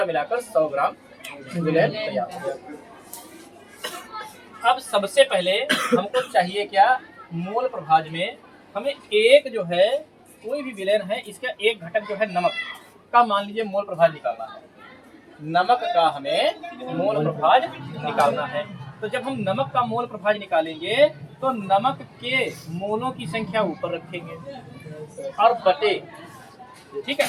मिलाकर 100 ग्राम विलयन तैयार हो गया। अब सबसे पहले हमको चाहिए क्या? मोल प्रभाज में हमें एक जो है, कोई भी विलयन है, इसका एक घटक जो है नमक का, मान लीजिए मोल प्रभाज निकालना है। नमक का हमें मोल प्रभाज निकालना है। तो जब हम नमक का मोल प्रभाज निकालेंगे तो नमक के मोलों की संख्या ऊपर रखेंगे और बटे, ठीक है,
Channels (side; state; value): both; identical; correlation 1.00